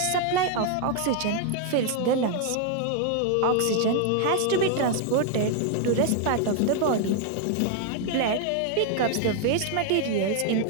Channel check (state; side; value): different; both; correlation 0.00